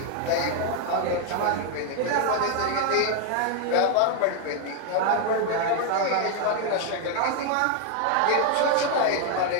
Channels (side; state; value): both; different; correlation 0.00